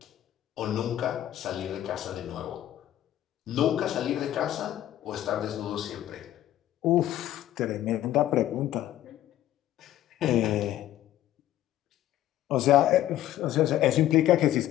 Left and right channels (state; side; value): quieter; right; 13.0 dB